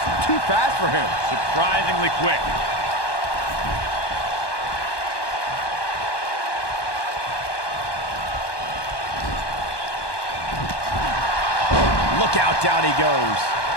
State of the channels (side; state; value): right; late; 1.2 ms